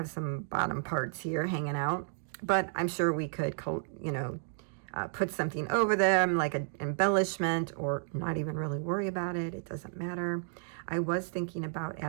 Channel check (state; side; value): silent; left; digital silence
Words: some bottom parts here hanging out, but I'm sure we could, put something over them like an embellishment, or not even really worry about it. It doesn't matter. I was thinking about